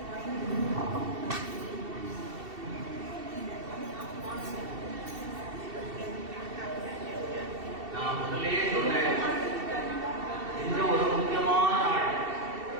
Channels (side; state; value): left; late; 2.7 ms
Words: நான் முதலே சொன்னேன், இந்த ஒரு முக்கியமான நாள்,